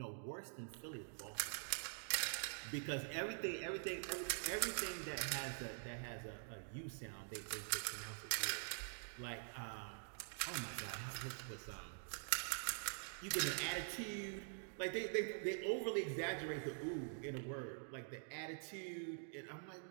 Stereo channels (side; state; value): left; silent; digital silence